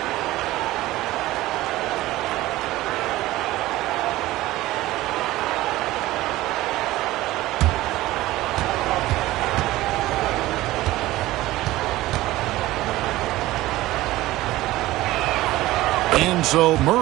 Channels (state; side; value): quieter; left; 17.2 dB